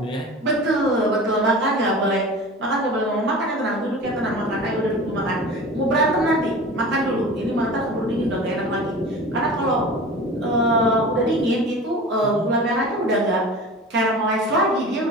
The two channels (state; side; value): normal; both; correlation 0.36